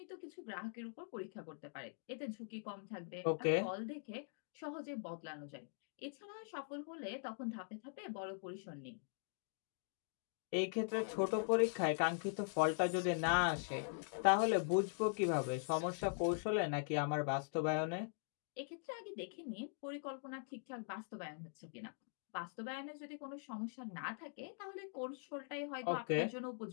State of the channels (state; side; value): silent; right; digital silence